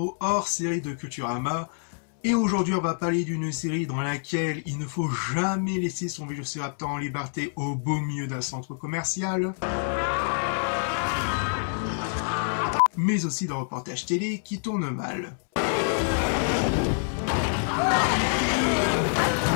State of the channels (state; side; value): silent; right; 60 dB below the other